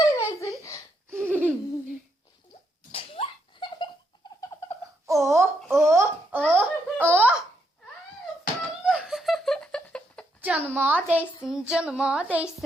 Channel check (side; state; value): both; normal; correlation 0.77